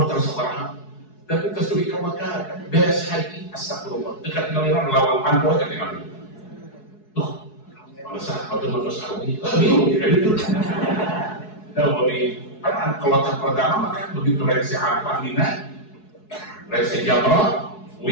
terasa warna, tapi kesuri ke Mekah beres haji astagfirullah dekat ngaliran lawang panpo aja dengan itu. Tuh, bangsa atau sawi, bingung ya itu. Nah, bagi kan kloter pertama kan begitu reaksi apa Mina, reaksi Jamrah,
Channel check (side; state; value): right; late; 4.7 ms